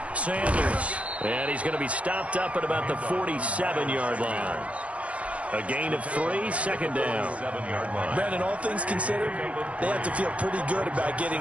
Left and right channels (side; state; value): left; late; 0.064 ms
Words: Sanders. And he's going to be stopped up at about the 47-yard line. A gain of 3, 2nd down. Brandon, all things considered, they have to feel pretty good about